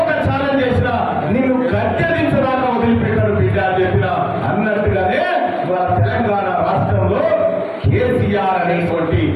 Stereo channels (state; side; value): identical; both; correlation 1.00